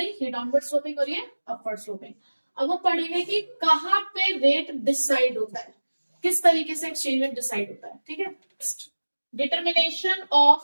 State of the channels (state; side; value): inverted; both; correlation -1.00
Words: ये डाउनवर्ड स्लोपिंग और ये अपवर्ड स्लोपिंग। अब हम पढ़ेंगे कि कहाँ पे रेट डिसाइड होता है, किस तरीके से एक्सचेंज रेट डिसाइड होता है। ठीक है, determination